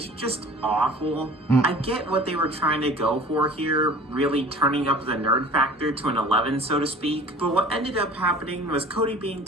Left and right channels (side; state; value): both; normal; correlation 0.45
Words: just awful. I get what they were trying to go for here, really turning up the nerd factor to an 11, so to speak. But what ended up happening was Cody being